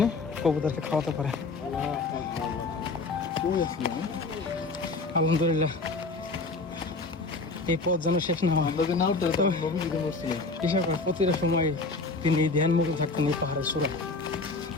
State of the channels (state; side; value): quieter; right; 3.7 dB